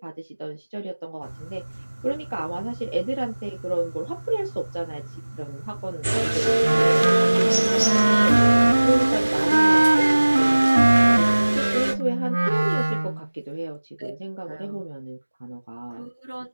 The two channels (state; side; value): inverted; both; correlation -1.00